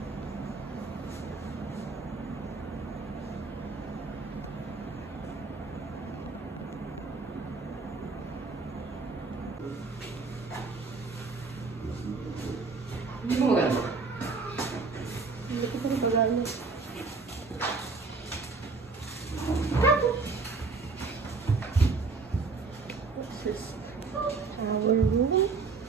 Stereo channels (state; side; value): quieter; left; 4.3 dB